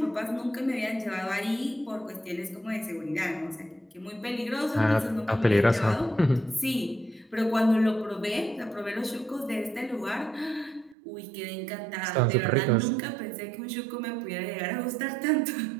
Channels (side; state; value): left; drops out; at 11.0 s